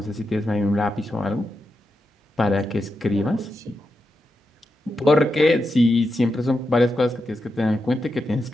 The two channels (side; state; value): both; normal; correlation 0.87